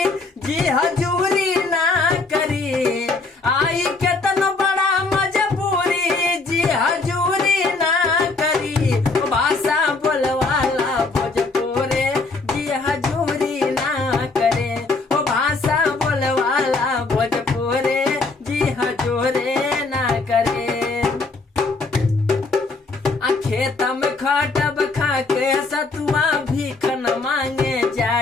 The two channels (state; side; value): quieter; right; 3.7 dB